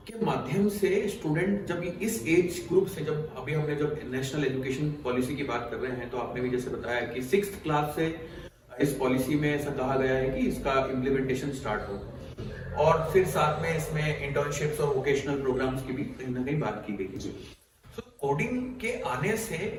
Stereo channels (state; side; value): identical; both; correlation 1.00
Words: के माध्यम से स्टूडेंट जब इस एज ग्रुप से, जब नेशनल एजुकेशन पॉलिसी की बात कर रहे हैं तो आपने भी जैसे बताया कि 6th क्लास से इस पॉलिसी में ऐसा कहा गया है कि इसका इम्प्लीमेंटेशन स्टार्ट हो और फिर साथ में इसमें इंटर्नशिप्स और वोकेशनल प्रोग्राम्स की भी कहीं ना कहीं बात की गई है। तो कोडिंग के आने से